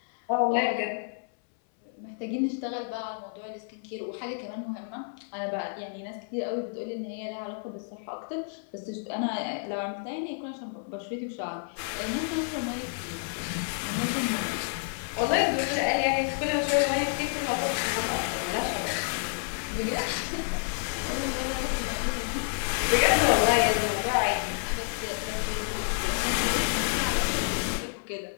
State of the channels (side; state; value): right; silent; 58 dB below the other